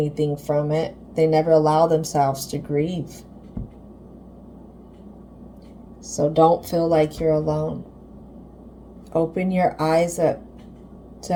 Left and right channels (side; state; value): both; identical; correlation 1.00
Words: from it. They never allow themselves to grieve. So don't feel like you're alone. Open your eyes up